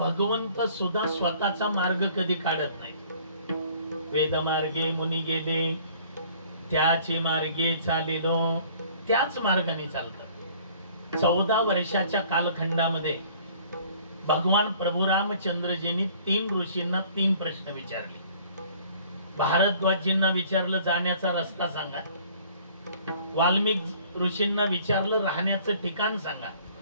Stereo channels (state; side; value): inverted; both; correlation -0.54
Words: सुद्धा स्वतःचा मार्ग कधी काढत नाही. वेद मार्गे मुनी गेले त्याची मार्गे चालिलो, त्याच मार्गाने चालतात. 14 वर्षाच्या कालखंडामध्ये भगवान प्रभू रामचंद्रजींनी 3 ऋषींना 3 प्रश्न विचारले. भारद्वाजींना विचारलं जाण्याचा रस्ता सांगा, वाल्मिक ऋषींना विचारलं राहण्याचं ठिकाण सांगा,